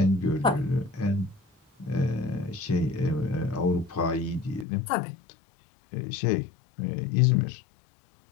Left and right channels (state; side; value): drops out; right; at 4.7 s